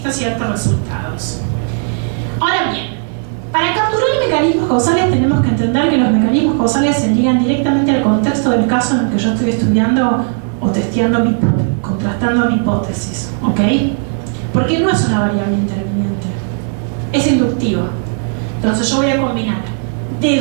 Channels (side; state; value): left; silent; 58 dB below the other